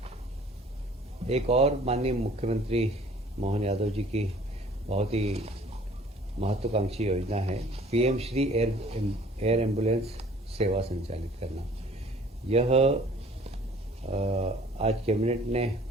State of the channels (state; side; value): normal; both; correlation 0.53